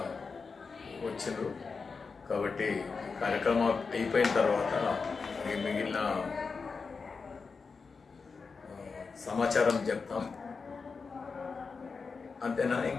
వచ్చిండ్రు కాబట్టి కార్యక్రమం అయిపోయిన తర్వాత మిగిలిన సమాచారం చెప్తాం. అంతేనా,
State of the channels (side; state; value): right; quieter; 4.8 dB